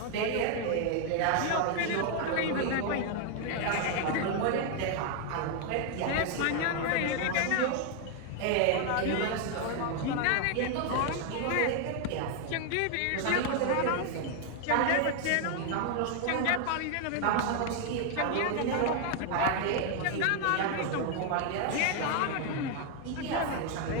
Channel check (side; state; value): both; different; correlation 0.00